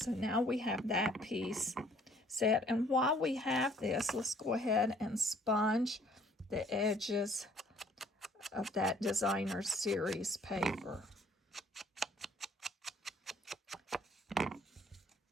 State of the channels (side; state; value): both; normal; correlation 0.59